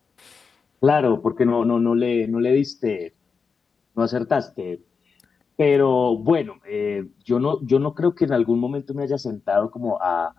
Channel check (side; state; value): right; quieter; 5.4 dB